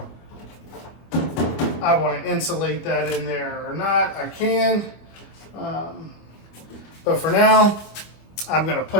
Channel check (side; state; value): right; late; 25 ms